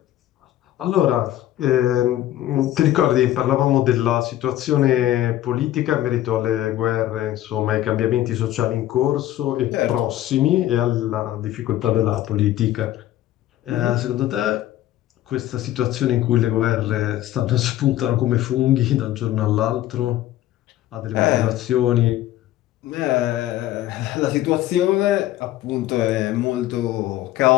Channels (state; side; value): quieter; right; 13.7 dB